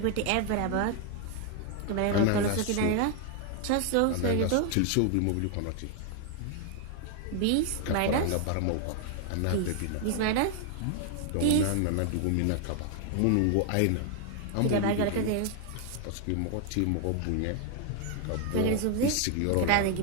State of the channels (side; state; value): both; different; correlation 0.00